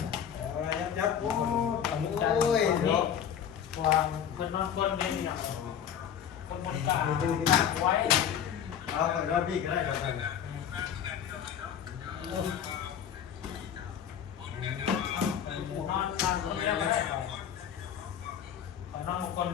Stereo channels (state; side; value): quieter; right; 8.8 dB